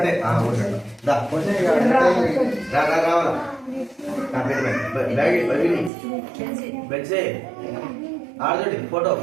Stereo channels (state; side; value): drops out; left; at 5.9 s